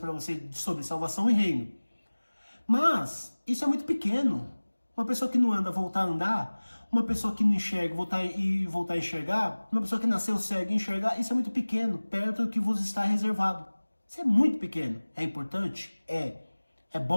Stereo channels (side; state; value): both; inverted; correlation -1.00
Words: vocês sobre salvação e reino. Mas isso é muito pequeno. Uma pessoa que não anda voltar a andar, uma pessoa que não enxerga voltar a enxergar, uma pessoa que nasceu cega e enxergar, isso é muito pequeno, perto do que vos está reservado. Isso é muito pequeno. É importante? É. É